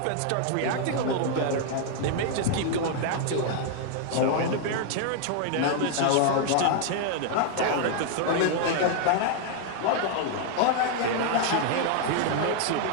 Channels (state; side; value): different; both; correlation 0.00